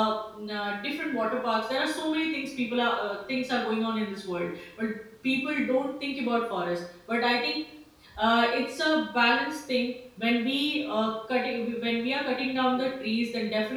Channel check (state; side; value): identical; both; correlation 1.00